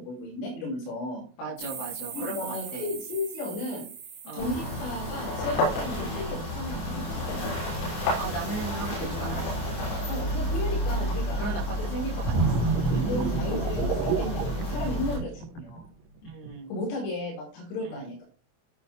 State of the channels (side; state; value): right; late; 24 ms